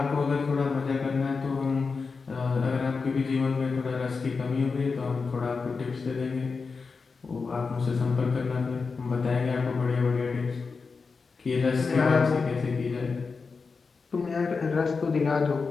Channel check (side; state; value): right; quieter; 4.7 dB